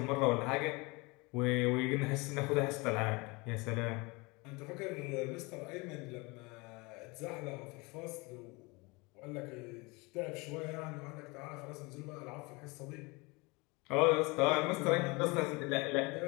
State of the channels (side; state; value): right; quieter; 26.3 dB